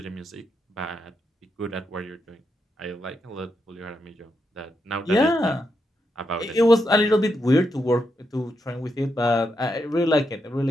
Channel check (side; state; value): both; normal; correlation 0.83